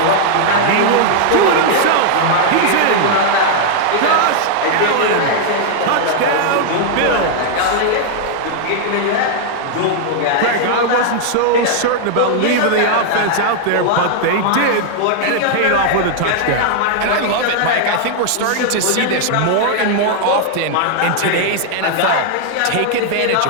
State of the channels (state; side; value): different; both; correlation -0.01